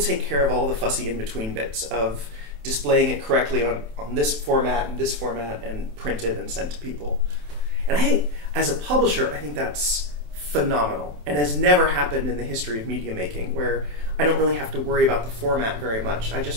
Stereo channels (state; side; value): late; left; 27 ms